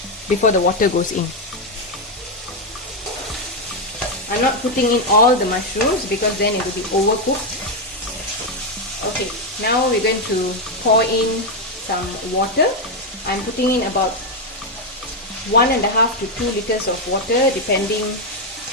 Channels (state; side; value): normal; both; correlation 0.04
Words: before the water goes in. I'm not putting in all the mushrooms because then it will be overcooked. Okay, now we're going to pour in some water. I'm putting in about 1.5 to 2 liters of water, depending